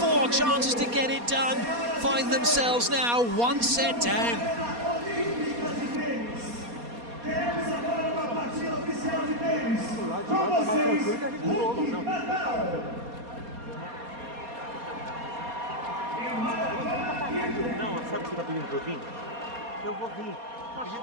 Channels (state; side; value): late; left; 4.2 ms